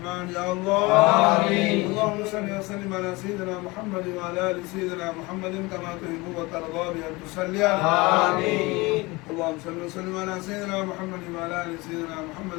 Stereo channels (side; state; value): right; quieter; 23.4 dB